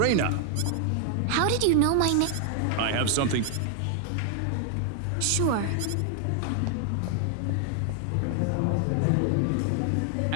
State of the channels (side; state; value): both; different; correlation 0.00